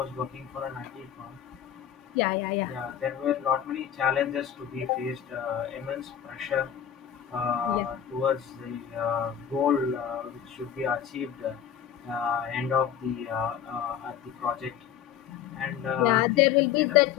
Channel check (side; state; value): right; quieter; 9.3 dB